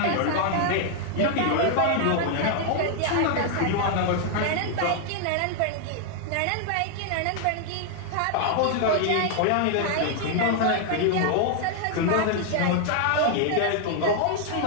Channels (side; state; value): both; different; correlation 0.00